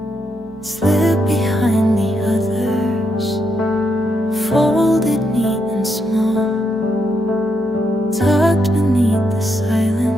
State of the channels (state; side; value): normal; both; correlation 0.80